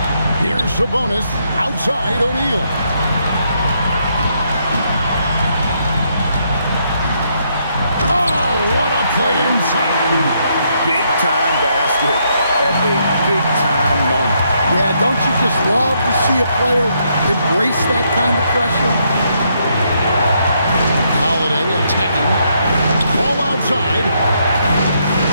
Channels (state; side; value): inverted; both; correlation -0.75